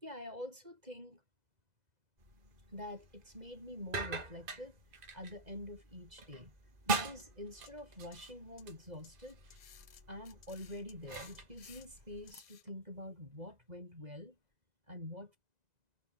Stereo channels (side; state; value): left; late; 2.0 ms